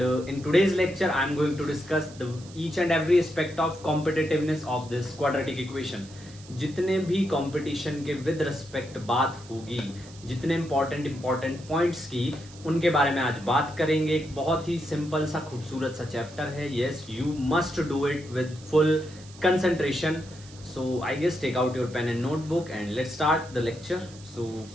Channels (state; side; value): noise; right; hiss, 21 dB below the sound